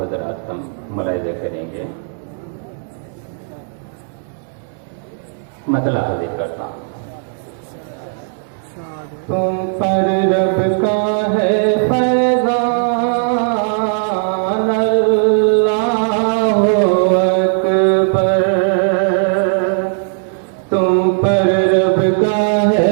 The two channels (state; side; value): silent; left; digital silence